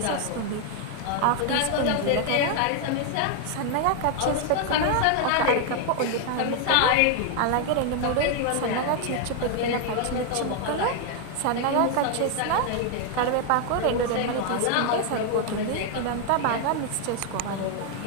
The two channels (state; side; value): different; both; correlation 0.00